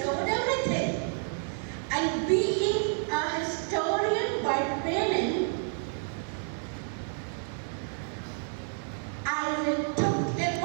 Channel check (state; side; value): silent; left; 58 dB below the other